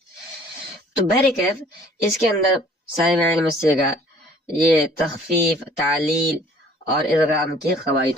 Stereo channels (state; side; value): normal; both; correlation 0.54